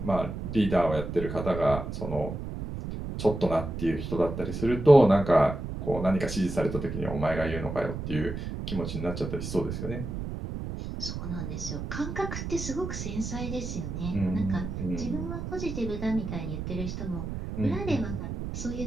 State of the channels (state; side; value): noise; right; rumble, 6 dB below the sound